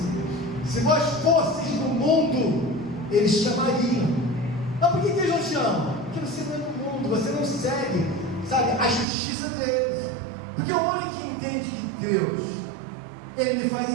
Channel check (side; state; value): left; drops out; at 9.1 s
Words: se vós fosseis do mundo, eles chamariam. Mas por que eles não chamam? Porque você não é do mundo, você não segue, sabe, a justiça deles. Porque o homem que entende que Deus, ele me faz